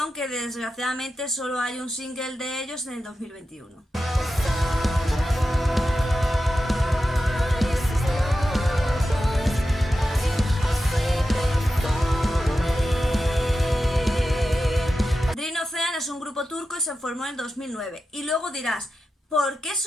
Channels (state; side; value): normal; both; correlation 0.91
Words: que desgraciadamente solo hay un single de ellos en el 2021. Es un grupo turco y se formó en 2009. Y luego dirás, ¿Por qué